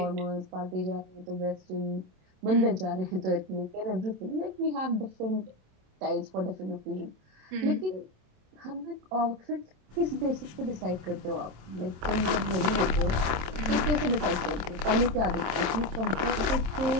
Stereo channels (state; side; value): late; left; 27 ms